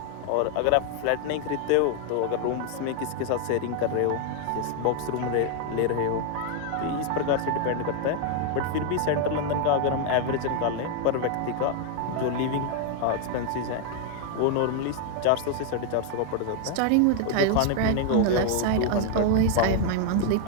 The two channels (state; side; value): different; both; correlation 0.00